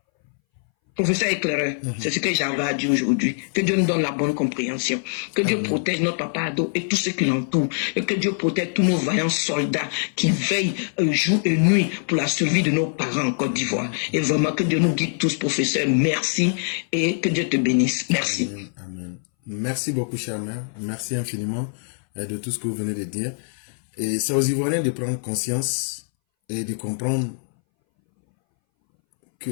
Professeur éclaireur, c'est ce que j'avais à dire aujourd'hui. Que Dieu nous donne la bonne compréhension. Que Dieu protège notre papa Ado et tous ceux qui l'entourent. Et que Dieu protège tous nos vaillants soldats qui veillent jour et nuit pour la survie de nos parents en Côte d'Ivoire. Et vraiment que Dieu nous guide tous, professeur. Merci et que Dieu te bénisse. Merci. Amen. Amen. Merci beaucoup, chère mère. Merci infiniment de tout ce que vous venez de dire. Et c'est aux Ivoiriens de prendre conscience et de comprendre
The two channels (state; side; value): silent; right; 62 dB below the other